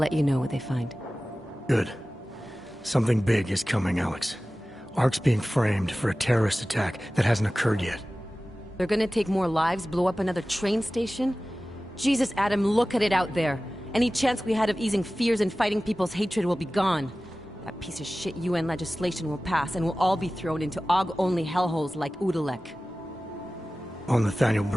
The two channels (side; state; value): both; normal; correlation 0.96